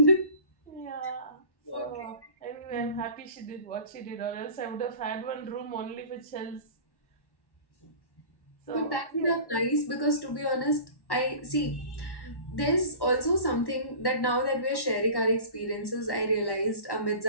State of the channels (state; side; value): late; right; 1.1 ms